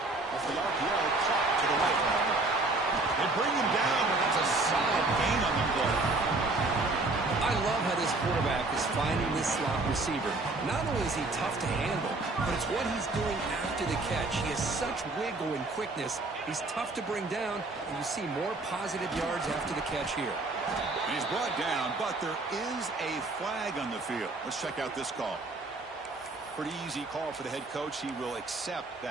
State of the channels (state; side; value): quieter; left; 3.2 dB